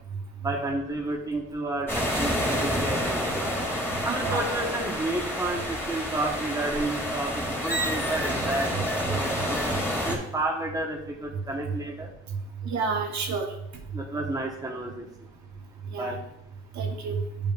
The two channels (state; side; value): normal; both; correlation 0.50